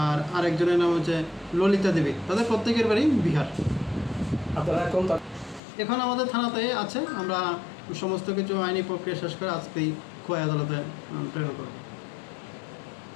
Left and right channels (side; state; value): right; drops out; at 5.6 s